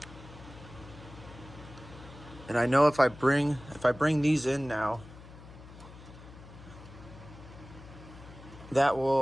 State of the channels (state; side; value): noise; left; hum, 17 dB below the sound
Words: And I know if I bring these in now, that